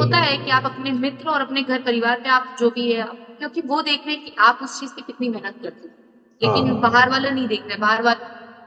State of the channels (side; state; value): both; identical; correlation 1.00